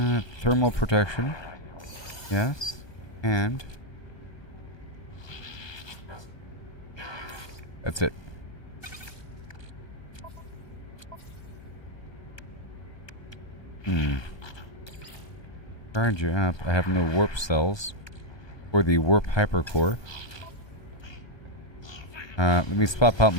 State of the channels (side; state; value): right; late; 1.2 ms